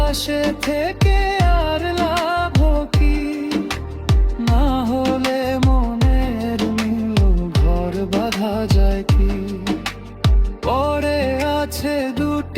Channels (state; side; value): identical; both; correlation 1.00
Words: থেকে আর লাভ কি, না হলে মনের মিল ঘর বাঁধা যায় কি। পরে আছে